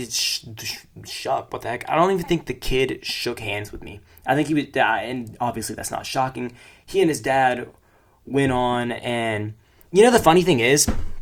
the heck? I don't even think the kid shook hands with me. I think he was, and obviously that's not shocking. He and his dad went on, and you know the funny thing is,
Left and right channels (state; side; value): identical; both; correlation 1.00